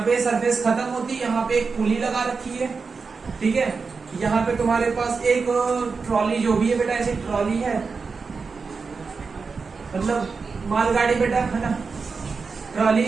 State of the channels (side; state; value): left; quieter; 4.8 dB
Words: पे सरफेस खत्म होती है, यहाँ पे एक पुली लगा रखी है, ठीक है। यहाँ पे तुम्हारे पास एक ट्रॉली जो भी है बेटा, ऐसी ट्रॉली है, मतलब मालगाड़ी बेटा, है ना, ट्रॉली